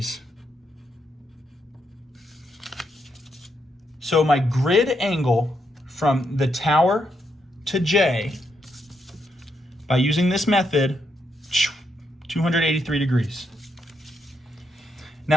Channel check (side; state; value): both; normal; correlation 0.80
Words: So my grid angle from the tower to J, by using this method, 283 degrees.